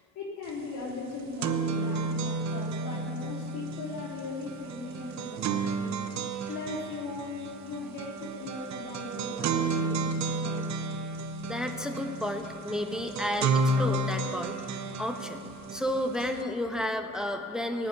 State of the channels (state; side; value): normal; both; correlation 0.41